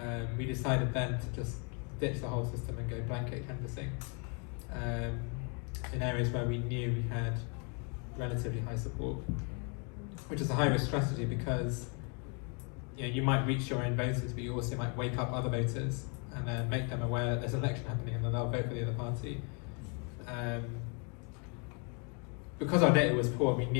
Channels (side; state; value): right; quieter; 36.5 dB